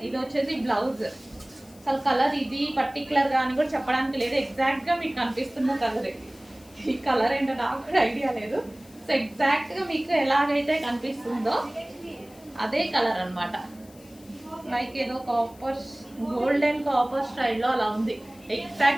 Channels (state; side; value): noise; left; hiss, 25 dB below the sound